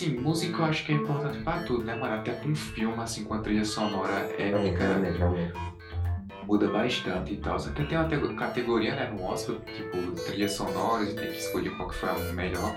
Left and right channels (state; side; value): identical; both; correlation 1.00